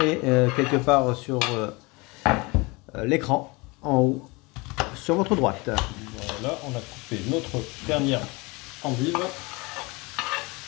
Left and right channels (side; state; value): right; quieter; 25.6 dB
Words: quelque part sur l'écran, en haut, sur votre droite. Voilà, on a coupé notre dernière endive.